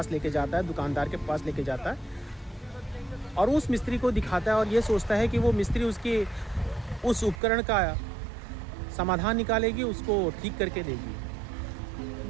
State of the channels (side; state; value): left; drops out; at 7.4 s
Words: लेके जाता है, दुकानदार के पास लेके जाता है और उस मिस्त्री को दिखाता है और ये सोचता है कि वो मिस्त्री उसके उस उपकरण का समाधान निकालेगी, उसको ठीक करके